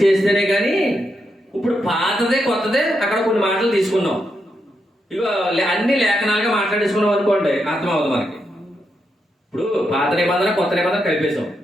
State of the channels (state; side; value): normal; both; correlation 0.83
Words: చేస్తేనే కానీ. ఇప్పుడు పాతదే కొత్తదే అక్కడ కొన్ని మాటలు తీసుకున్నాం, ఇక అన్ని లేఖనాలుగా మాట్లాడేసుకున్నాం అనుకోండి, అర్థమవుతుంది మనకి. ఇప్పుడు పాత నిబంధన కొత్త నిబంధన కలిపేశాం.